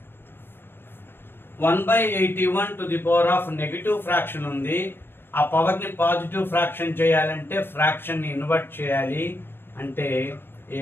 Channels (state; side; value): late; right; 0.10 ms